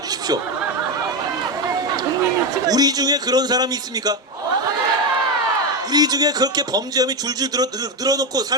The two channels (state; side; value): normal; both; correlation 0.11